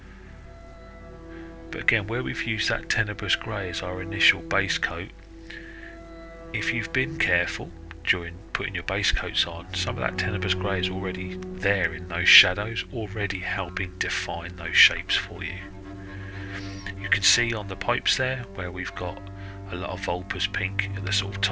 But again, where we've used that Tenebrous Grey as our initial base coat, if you've been careful during putting your base coats on, some of that Tenebrous Grey is already there in those shadows, already helping define those shapes for you. You can see on the pipes there where we've got a lot of Vulpes pink at the sort of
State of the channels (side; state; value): both; identical; correlation 1.00